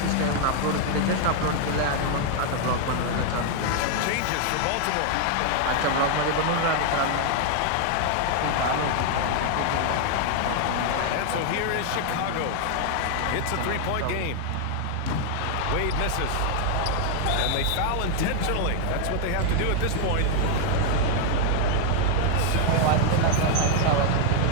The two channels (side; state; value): both; different; correlation 0.00